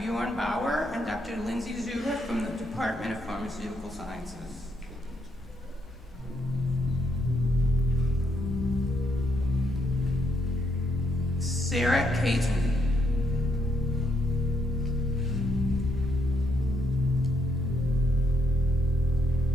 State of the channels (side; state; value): both; normal; correlation 0.76